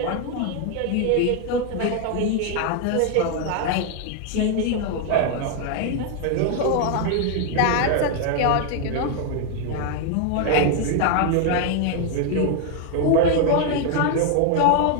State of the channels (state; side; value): different; both; correlation 0.00